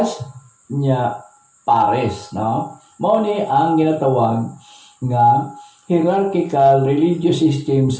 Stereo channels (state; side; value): identical; both; correlation 1.00